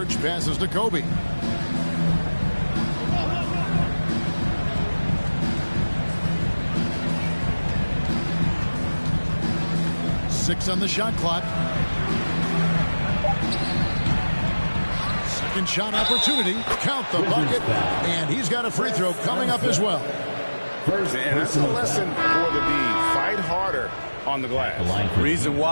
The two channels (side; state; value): both; inverted; correlation -1.00